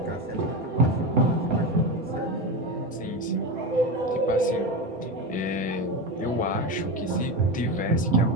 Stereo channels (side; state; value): both; normal; correlation 0.19